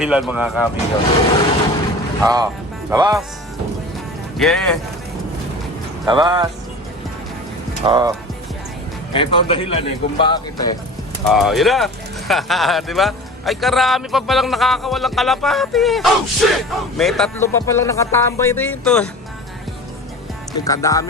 mga kamigo. Labas. Yeah. Labas. Ito ang dahilan kung bakit yun na. Diba? Ay karami pa palang nakakawalang kalapati. Oh shit! May 3 pa palang nakatambay dito.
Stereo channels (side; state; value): both; normal; correlation 0.36